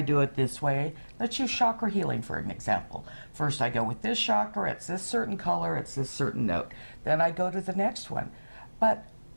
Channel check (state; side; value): inverted; both; correlation -1.00